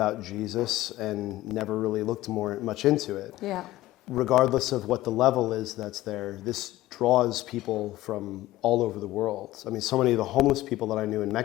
Jesus and never really looked much into it. Yeah. Regardless of what the level is that's there, this draws people from all over the world. I mean, so many of the homeless people that I knew in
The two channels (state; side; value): quieter; right; 16.2 dB